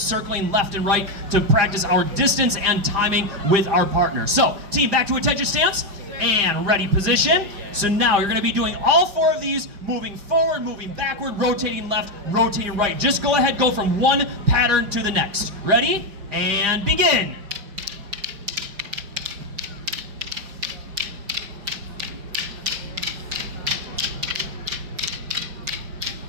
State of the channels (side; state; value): left; late; 4.9 ms